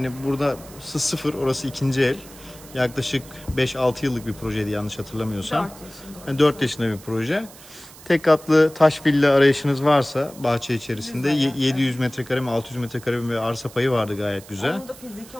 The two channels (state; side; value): noise; right; hiss, 20 dB below the sound